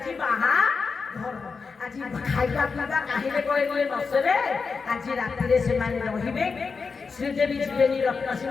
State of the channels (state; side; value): quieter; right; 5.0 dB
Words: बाहा घर आज खाଇବା ପିଇବା କାହିଁରେ କହିଲେ ନସରେ ଆଜି ରାତିରେ ସେମାନେ ରହିବେ ଶ୍ରୀଦେବୀ ଯିବେନି ରତ୍ନ